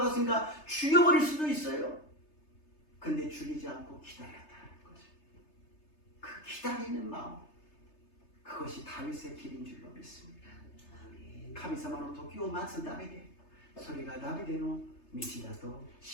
죽여버릴 수도 있어요. 근데 죽이지 않고 기다렸다는 거죠. 그 기다리는 마음, 그것이 다윗의 길인 줄로 믿습니다. 神様の時を待つダビデ、それがダビデの道だと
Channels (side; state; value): right; late; 3.3 ms